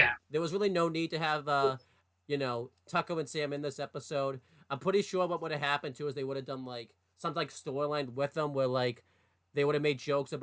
there was really no need to have Tucker and Sam in this episode. I'm pretty sure what would have happened too is they would have done like some like storyline with them where like they would have made jokes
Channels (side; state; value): both; identical; correlation 1.00